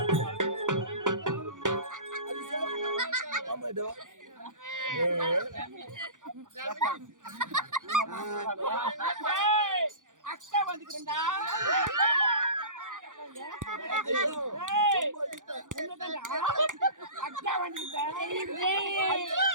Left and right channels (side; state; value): left; late; 0.87 ms